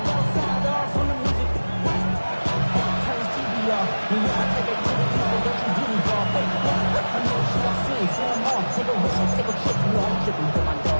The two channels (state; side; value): inverted; both; correlation -1.00